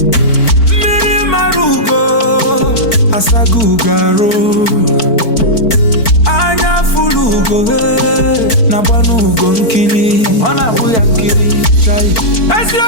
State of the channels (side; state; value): right; late; 4.5 ms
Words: Miri marugo Asagugaro Anya fulugo na banugo nkili ona buya nkili chai